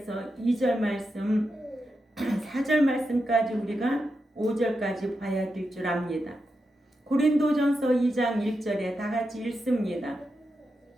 2절 말씀 4절 말씀까지 우리가 5절까지 봐야 될 줄 압니다. 고린도전서 2장 1절에 다 같이 읽습니다.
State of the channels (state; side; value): normal; both; correlation 0.87